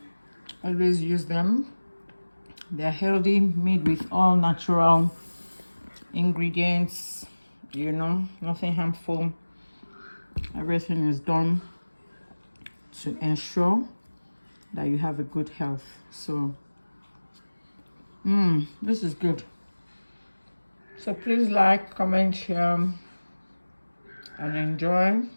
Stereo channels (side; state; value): both; inverted; correlation -1.00